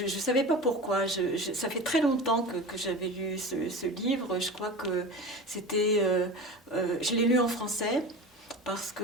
savais pas pourquoi. Ça fait très longtemps que j'avais lu ce livre. Je crois que c'était, je l'ai lu en français parce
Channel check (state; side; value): normal; both; correlation 0.31